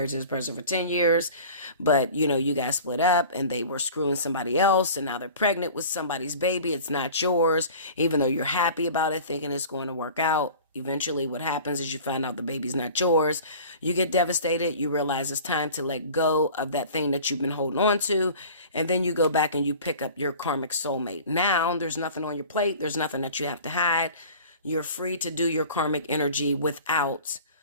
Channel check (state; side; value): inverted; both; correlation -0.42